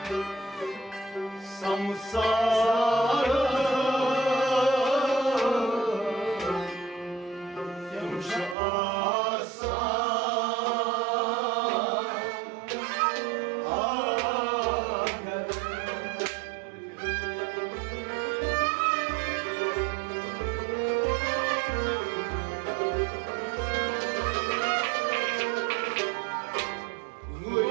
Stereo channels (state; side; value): drops out; left; at 8.6 s